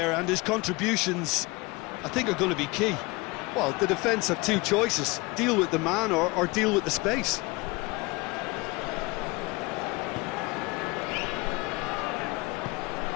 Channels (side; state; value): right; quieter; 24.6 dB